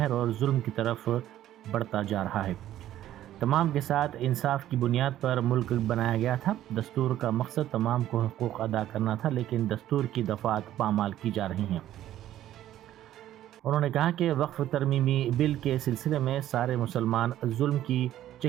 اور ظلم کی طرف بڑھتا جا رہا ہے۔ تمام کے ساتھ انصاف کی بنیاد پر ملک بنایا گیا تھا۔ دستور کا مقصد تمام کو حقوق ادا کرنا تھا، لیکن دستور کی دفعات پامال کی جا رہی ہیں۔ انہوں نے کہا کہ وقف ترمیمی بل کے سلسلے میں سارے مسلمان ظلم کی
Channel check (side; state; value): left; quieter; 12.7 dB